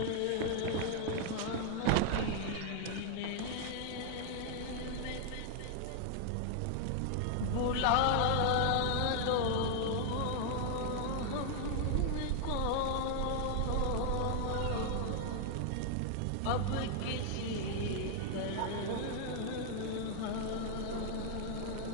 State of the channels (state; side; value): different; both; correlation 0.00